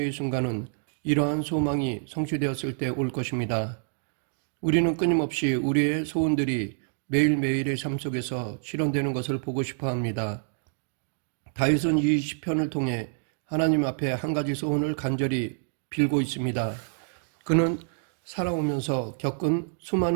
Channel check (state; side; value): silent; left; digital silence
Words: 순간은 이러한 소망이 성취되었을 때 올 것입니다. 우리는 끊임없이 우리의 소원들이 매일매일의 삶 속에서 실현되는 것을 보고 싶어 합니다. 다윗은 이 시편을 통해 하나님 앞에 한 가지 소원을 간절히 빌고 있습니다. 그는 살아오면서 겪은